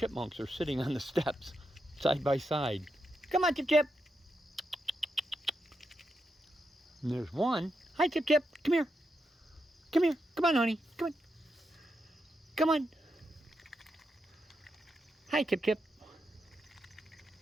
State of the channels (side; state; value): both; normal; correlation 0.85